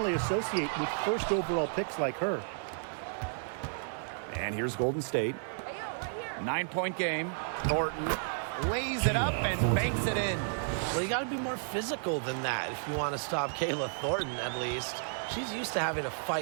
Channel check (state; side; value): silent; left; 56 dB below the other